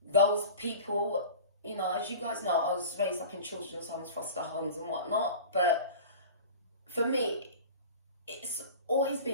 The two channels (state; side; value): inverted; both; correlation -0.37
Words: those people you know, as you guys know, I was raised up in children's homes, foster homes and whatnot. But for me, it's always